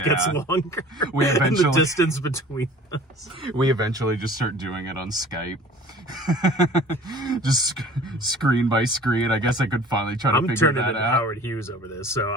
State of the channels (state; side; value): normal; both; correlation 0.46